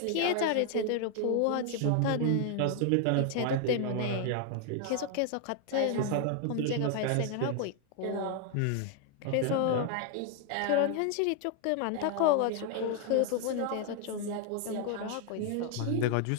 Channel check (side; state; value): both; different; correlation 0.00